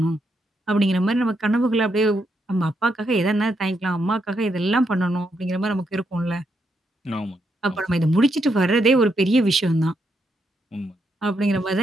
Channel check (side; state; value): both; normal; correlation 0.80